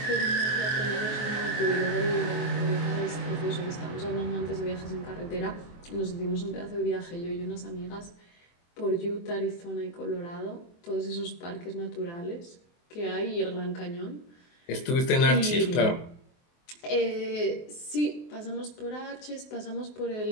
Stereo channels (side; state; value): right; late; 23 ms